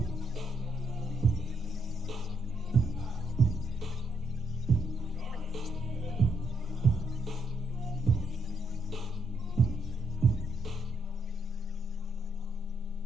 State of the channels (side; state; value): both; normal; correlation 0.77